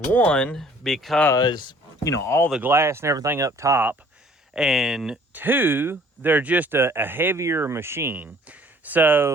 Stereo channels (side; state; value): both; normal; correlation 0.56